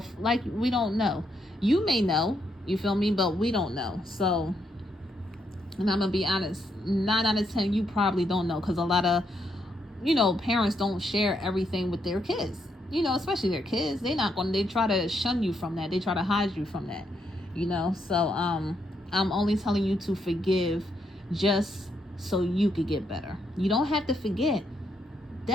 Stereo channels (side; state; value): both; normal; correlation 0.77